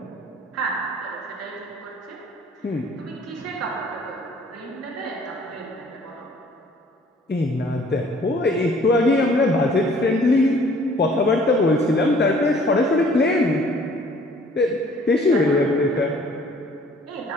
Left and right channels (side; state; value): both; normal; correlation 0.56